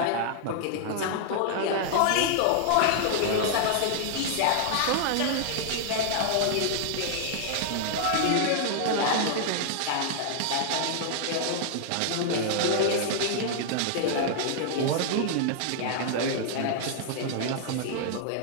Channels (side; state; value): both; different; correlation -0.01